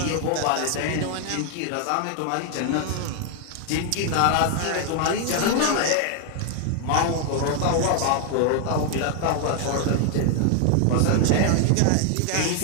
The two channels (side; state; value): both; different; correlation 0.00